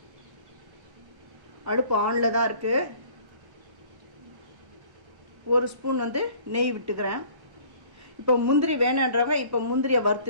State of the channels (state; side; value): late; left; 1.1 ms